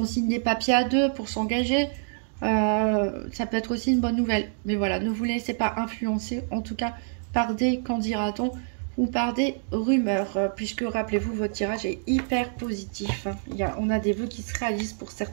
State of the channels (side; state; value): left; silent; digital silence